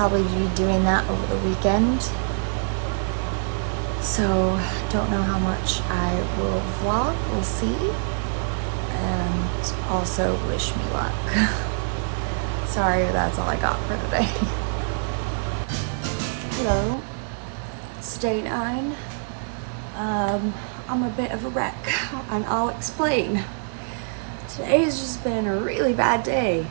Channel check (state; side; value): silent; left; 62 dB below the other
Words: be doing that over the weekend. So don't know how much I will vlog, we'll see. And also wish me luck. Sorry, that's all I got for today. Hello, it's day 9. I'm a bit of a wreck, and I'll explain. Today has just been a really bad day.